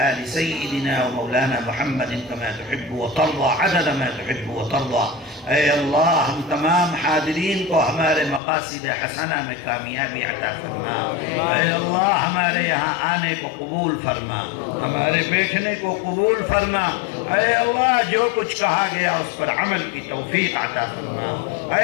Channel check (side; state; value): right; drops out; at 8.4 s